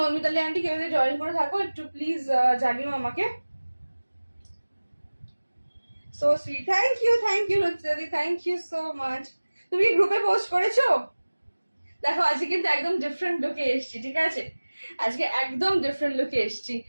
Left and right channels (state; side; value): inverted; both; correlation -1.00